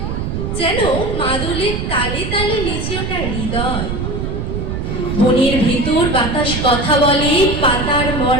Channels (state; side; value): noise; right; rumble, 3 dB below the sound